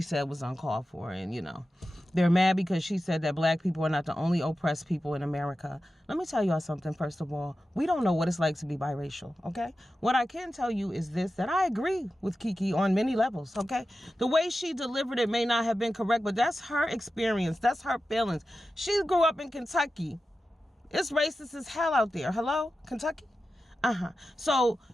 was uncalled for, and they're mad because she said that black people are not the only oppressed people in America. Let me tell y'all something. First of all, we don't know what it's like to be biracial, okay? What I can tell you is this, that I agree with Keke on many levels, okay? The way she delivered it may not have been correct, but that's her experience. That's her feelings. She grew up in Kentucky. It's racist as hell out there. Hello? Kentucky? So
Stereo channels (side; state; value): both; normal; correlation 0.92